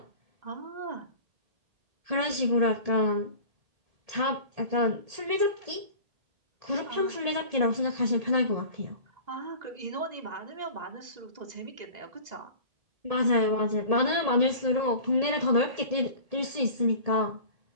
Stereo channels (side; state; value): left; late; 1.7 ms